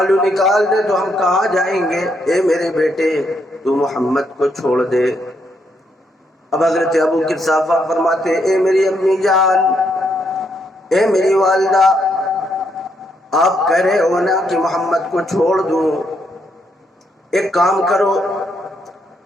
نکال دے تو ہم کہاں جائیں گے؟ اے میرے بیٹے تو محمد کو چھوڑ دے۔ اب حضرت ابو قحافہ فرماتے اے میری امی جان، اے میری والدہ، آپ کہہ رہے ہو نا کہ محمد کو چھوڑ دوں، ایک کام کرو،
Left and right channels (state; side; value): normal; both; correlation 0.76